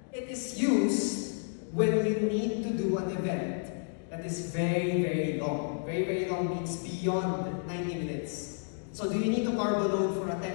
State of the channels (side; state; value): right; silent; digital silence